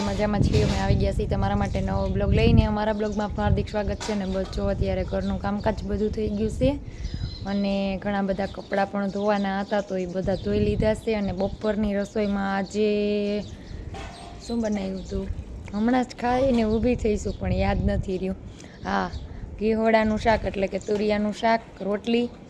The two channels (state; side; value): identical; both; correlation 1.00